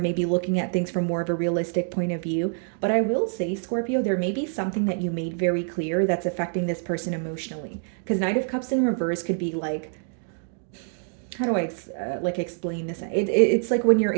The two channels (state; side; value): silent; left; 57 dB below the other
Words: looking at things from more of a realistic point of view. But I will say, Scorpio, there may be something that you made very clear that's affecting this person emotionally. Because Knight of Cups in reverse could be like, how do I explain this? It's like when you're